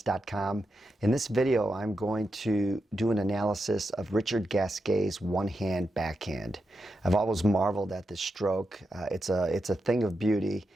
In this video, I'm going to do an analysis of Richard Gasquet's one-hand backhand. I've always marveled at this stroke. It's a thing of beauty,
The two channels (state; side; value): normal; both; correlation 0.87